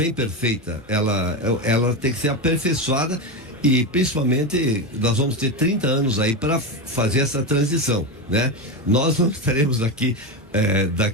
perfeita, ela tem que ser aperfeiçoada. E principalmente nós vamos ter 30 anos aí para fazer essa transição, né? Nós não estaremos aqui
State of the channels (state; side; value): normal; both; correlation 0.15